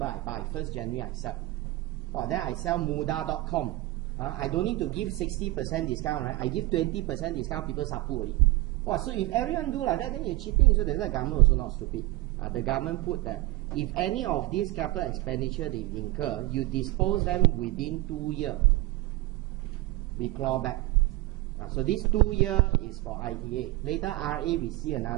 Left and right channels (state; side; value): quieter; left; 18.8 dB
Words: I buy, 1st January I sell. Well, then I sell muda.com. I don't need to give 60% discount, right? I give 20% discount, people sapu already. Wow, so if everyone do like that, then you're cheating. So that's why the government also not stupid. The government put that if any of these capital expenditure they incur, you dispose them within 2 years. We claw back. So this 2 year is for ITA. Later RA we see